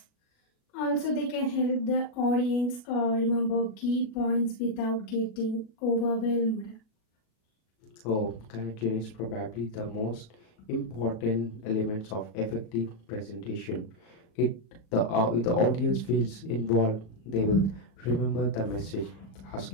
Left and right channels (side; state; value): right; late; 37 ms